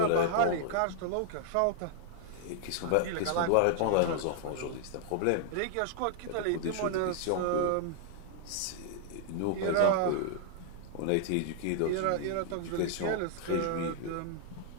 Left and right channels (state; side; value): different; both; correlation -0.01